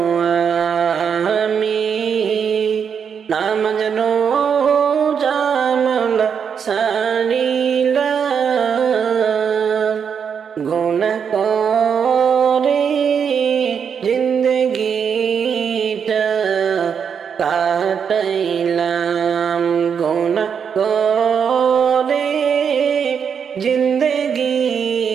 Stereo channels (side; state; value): left; quieter; 7.1 dB